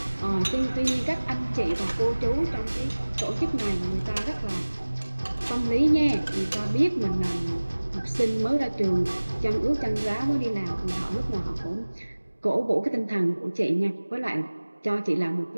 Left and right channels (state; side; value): inverted; both; correlation -1.00